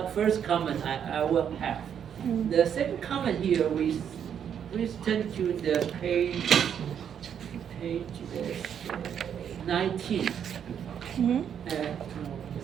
first comment I will have. Mm-hmm. The second comment here, we turn to the page 19. Mm-hmm.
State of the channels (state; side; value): quieter; left; 8.5 dB